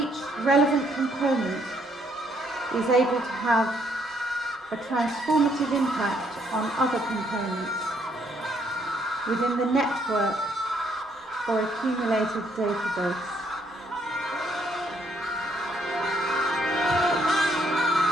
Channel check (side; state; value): both; normal; correlation 0.69